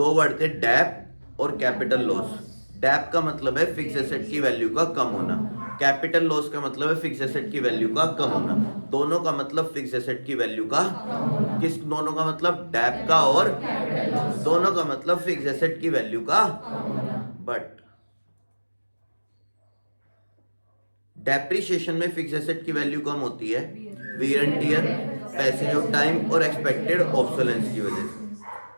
वर्ड थे, डेप और कैपिटल लॉस। डेप का मतलब है फिक्स एसेट की वैल्यू का कम होना, कैपिटल लॉस का मतलब है फिक्स एसेट की वैल्यू का कम होना। दोनों का मतलब फिक्स एसेट की वैल्यू का, किस दोनों का मतलब? डेप का और दोनों का मतलब फिक्स एसेट की वैल्यू का। बट डेप्रिसिएशन में फिक्स एसेट की वैल्यू कम होती है, wear and tear, passage of time और एक्सपेक्टेड ऑब्सोलेंस की वजह से।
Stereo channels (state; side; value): inverted; both; correlation -1.00